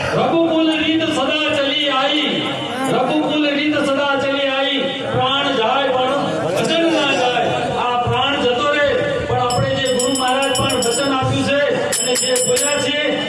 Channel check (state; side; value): identical; both; correlation 1.00